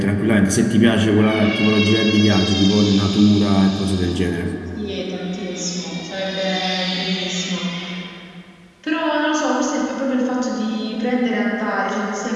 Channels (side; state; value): both; identical; correlation 1.00